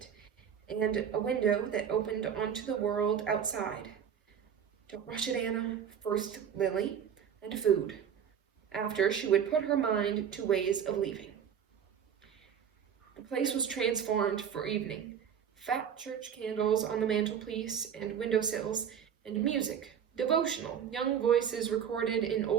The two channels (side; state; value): left; quieter; 8.3 dB